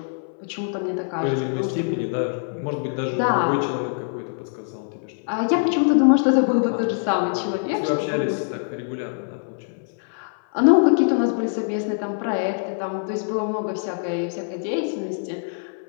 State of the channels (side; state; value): right; silent; 58 dB below the other